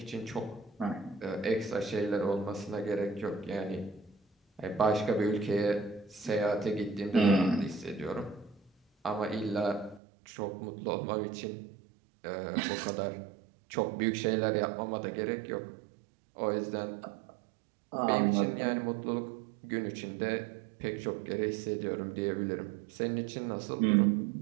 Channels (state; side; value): drops out; left; at 10.0 s